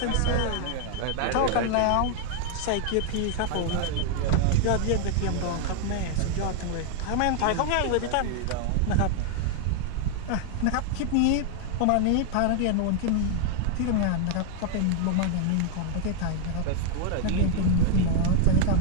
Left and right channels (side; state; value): both; different; correlation 0.00